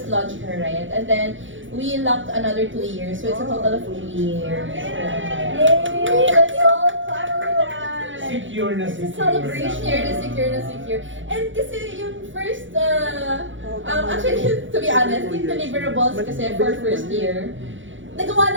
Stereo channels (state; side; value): late; left; 0.56 ms